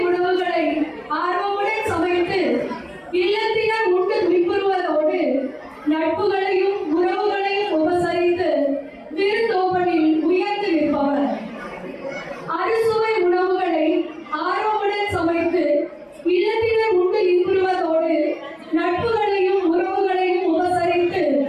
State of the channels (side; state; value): both; identical; correlation 1.00